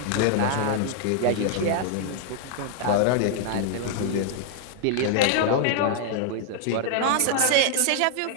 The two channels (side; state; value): both; different; correlation 0.00